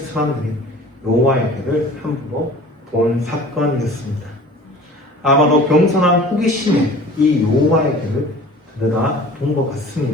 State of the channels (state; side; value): normal; both; correlation 0.44